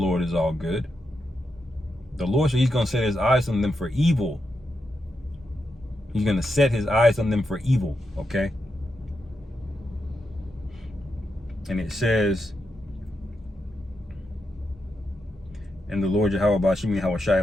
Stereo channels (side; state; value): both; normal; correlation 0.85